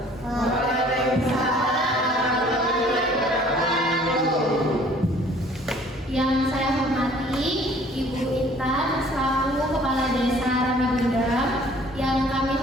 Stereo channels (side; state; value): both; normal; correlation 0.55